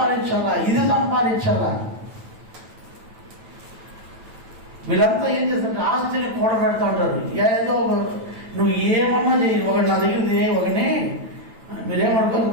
ఇది సంపాదించాలా. వీళ్ళంతా ఏం చేస్తారంటే ఆస్తిని కూడబెడతా ఉంటారు. ఏదో నువ్వు ఏమన్నా చెయ్యి. ఒకటి నా దగ్గర ఒకని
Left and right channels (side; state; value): left; late; 9.1 ms